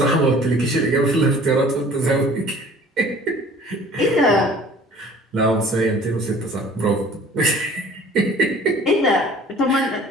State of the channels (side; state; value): both; normal; correlation 0.49